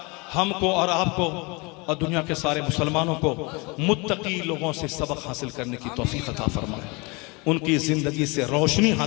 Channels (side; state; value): right; quieter; 27.5 dB